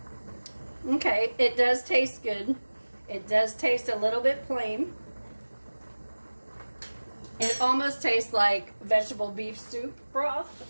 Okay, it does taste good. It does taste a little bit plain. It almost tastes like vegetable beef soup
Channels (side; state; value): both; inverted; correlation -1.00